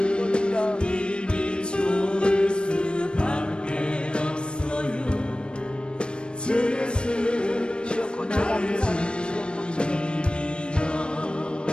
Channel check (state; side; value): late; right; 0.055 ms